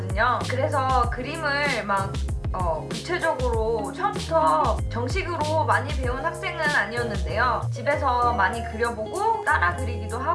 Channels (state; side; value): identical; both; correlation 1.00